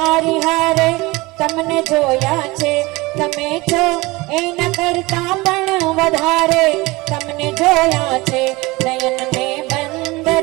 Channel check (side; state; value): left; quieter; 22.5 dB